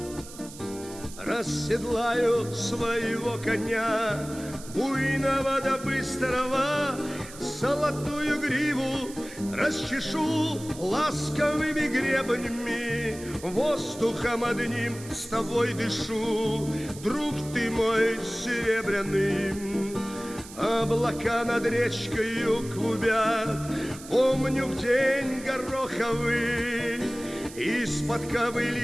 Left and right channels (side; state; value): right; noise; hiss, 16 dB below the sound